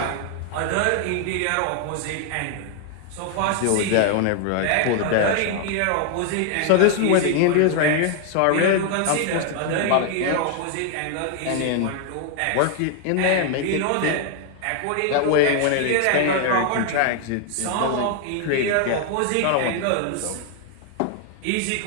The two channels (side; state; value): both; different; correlation 0.00